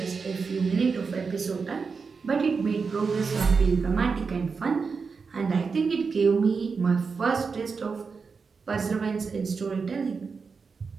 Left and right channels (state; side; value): quieter; left; 5.1 dB